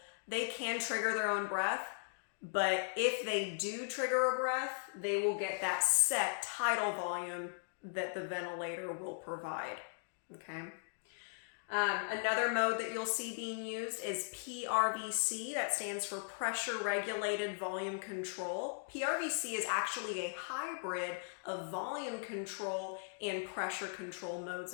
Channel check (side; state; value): right; silent; digital silence